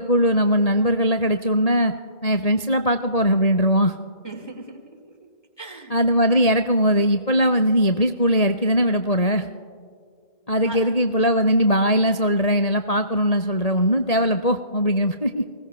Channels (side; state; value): right; late; 1.8 ms